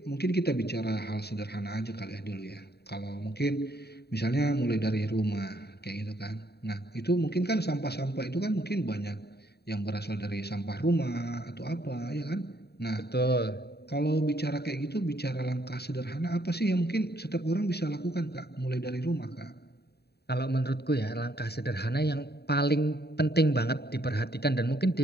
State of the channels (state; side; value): late; right; 0.47 ms